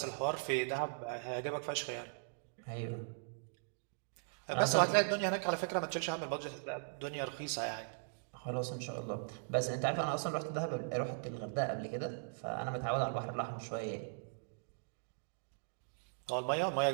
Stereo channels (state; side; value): silent; left; digital silence